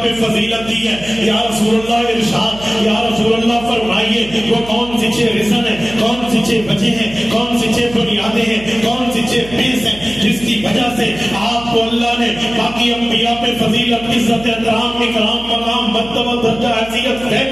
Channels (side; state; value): right; noise; hum, 16 dB below the sound